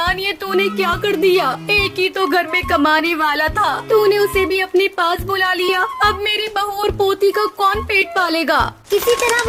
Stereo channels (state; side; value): identical; both; correlation 1.00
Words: ये तूने क्या कर दिया। एक ही तो घर में कमाने वाला था, तूने उसे भी अपने पास बुला लिया। अब मेरी बहू और पोती का कौन पेट पालेगा। किसी तरह